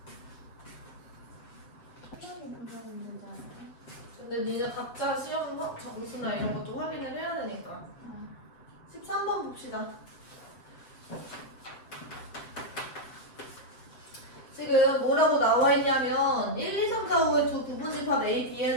한번이 금방 되잖아요. 근데 니네 각자 시험 점수나 이런 것도 확인을 해야 되니까. 13번 봅시다. 지금 뭐라고 나와 있냐면 1, 2, 3, 4, 5의 두 부분집합 A, B에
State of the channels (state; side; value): late; right; 7.7 ms